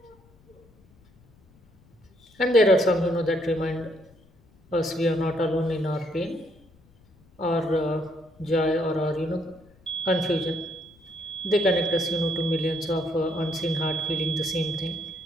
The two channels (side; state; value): left; noise; rumble, 29 dB below the sound